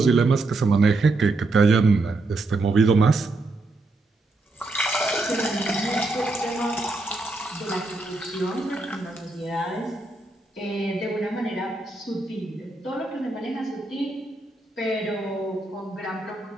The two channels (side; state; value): left; quieter; 3.1 dB